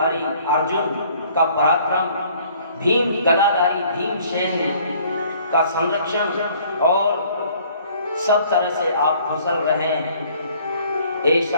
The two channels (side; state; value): both; inverted; correlation -0.57